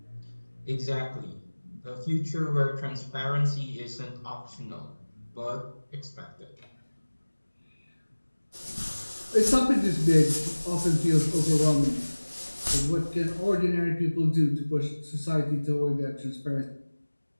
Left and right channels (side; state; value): both; inverted; correlation -1.00